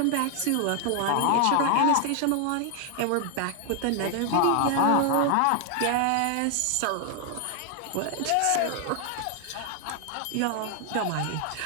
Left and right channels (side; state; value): both; different; correlation 0.00